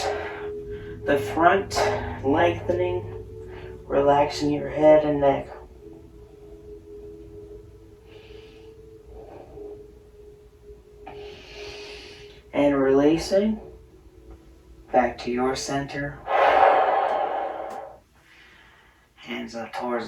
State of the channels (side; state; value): both; identical; correlation 1.00